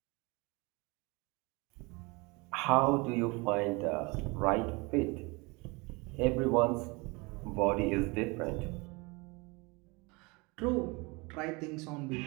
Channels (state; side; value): quieter; left; 26.7 dB